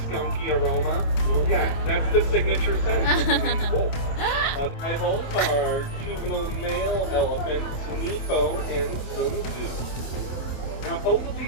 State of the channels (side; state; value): right; late; 27 ms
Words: aroma? Yeah, that's the signature scent of Maned wolf. Rivals are juvenile male elephants, Nepo and Sun Tzu. Now, both of